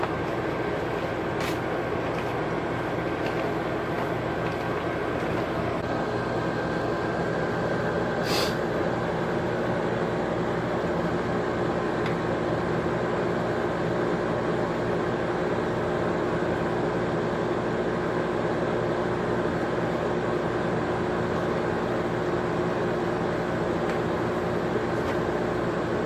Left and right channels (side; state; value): both; identical; correlation 1.00